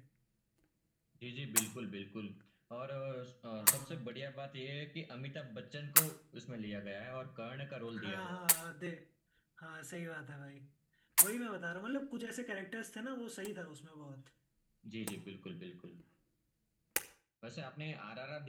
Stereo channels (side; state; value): both; identical; correlation 1.00